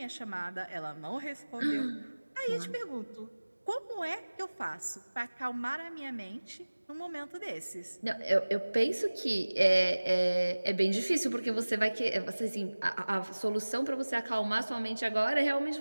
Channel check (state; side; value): inverted; both; correlation -1.00